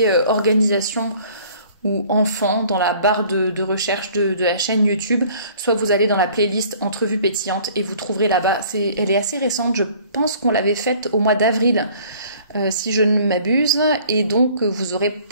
organisation ou enfant dans la barre de recherche de la chaîne YouTube, soit vous allez dans la playlist entrevue pétillante et vous trouverez là-bas. Elle est assez récente, je pense qu'on l'avait faite au mois d'avril, si je ne m'abuse, et donc vous aurez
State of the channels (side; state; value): both; inverted; correlation -0.53